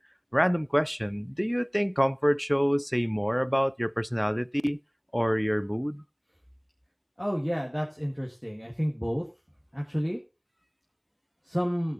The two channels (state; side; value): identical; both; correlation 1.00